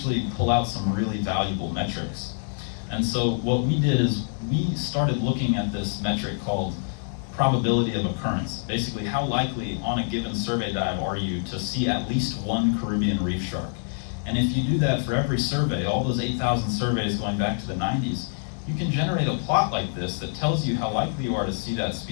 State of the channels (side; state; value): right; silent; digital silence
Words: pull out some really valuable metrics. And so what we did is we started looking at this metric called probability of occurrence. Basically, how likely on a given survey dive are you to see at least one Caribbean reef shark? And if you do that for every survey, all those 8,000 surveys going back to the 90s, you can generate a plot like this that tells you how likely you are to see that